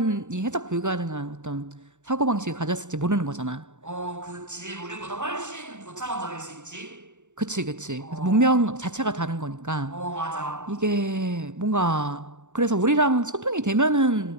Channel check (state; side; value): late; left; 0.84 ms